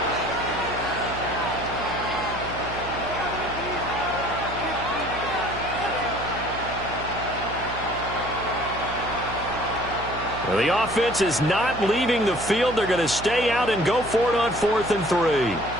Well, the offense is not leaving the field. They're going to stay out and go for it on 4th and 3.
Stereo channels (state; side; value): noise; right; hum, 11 dB below the sound